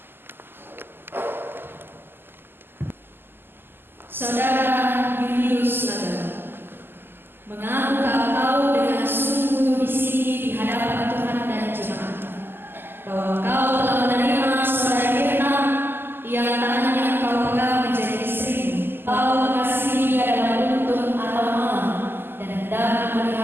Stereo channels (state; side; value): late; left; 0.099 ms